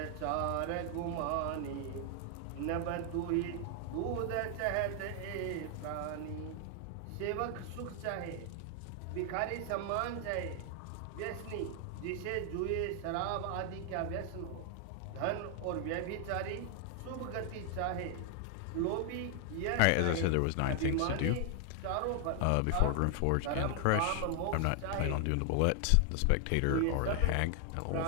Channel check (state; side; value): different; both; correlation 0.00